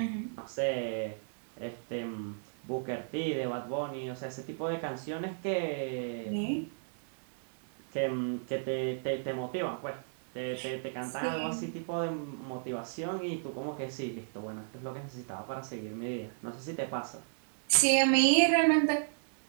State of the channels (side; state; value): left; silent; 55 dB below the other